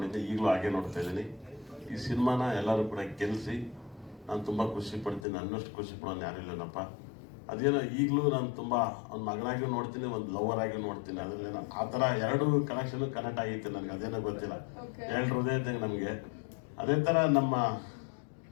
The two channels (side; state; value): right; drops out; at 5.2 s